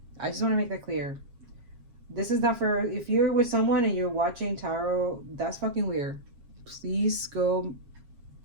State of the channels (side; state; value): left; late; 7.3 ms